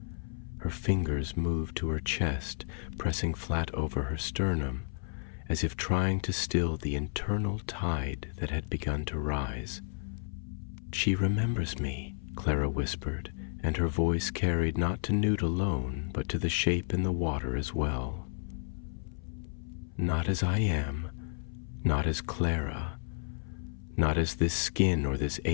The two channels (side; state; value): right; silent; 56 dB below the other